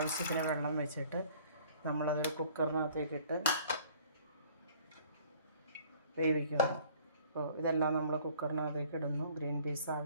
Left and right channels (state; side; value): inverted; both; correlation -0.54